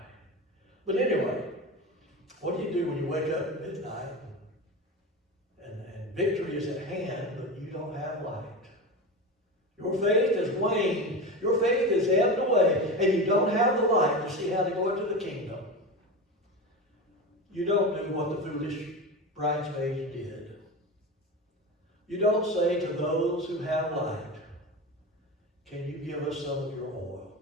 But anyway, what do you do when you wake up at midnight and victory is at hand, but you don't have light? Your faith has waned. Your faith has ebbed away, and you don't have the light to see how to go into the kingdom. You don't do what the foolish bridesmaids did. You don't say to those who have light, can you give us some of your oil?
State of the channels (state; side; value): normal; both; correlation 0.24